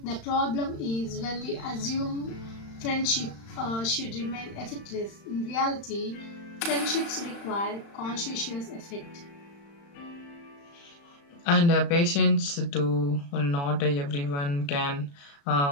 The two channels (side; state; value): right; late; 35 ms